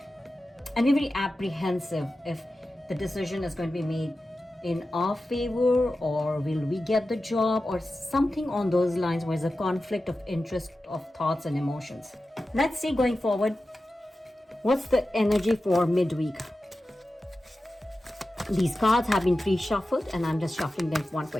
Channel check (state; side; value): normal; both; correlation 0.93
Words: and we're very apprehensive if the decision is going to be made in our favor, or will we get the job, or something on those lines where there's a conflict of interest of thoughts and emotions. Let's see going forward, what's the energy for midweek? These cards have been pre-shuffled and I'm just shuffling them one